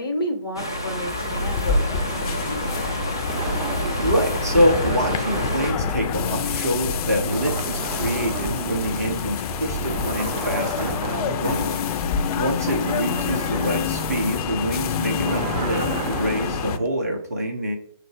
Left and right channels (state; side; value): inverted; both; correlation -0.55